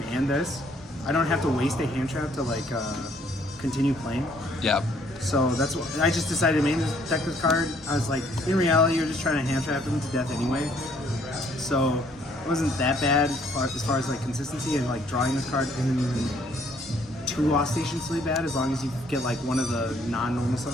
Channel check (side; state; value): both; normal; correlation 0.64